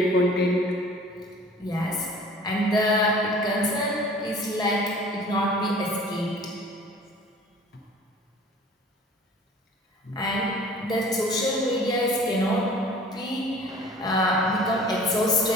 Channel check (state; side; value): normal; both; correlation 0.47